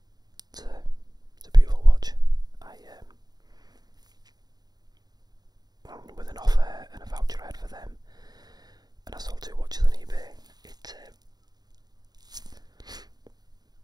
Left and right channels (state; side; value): late; left; 0.20 ms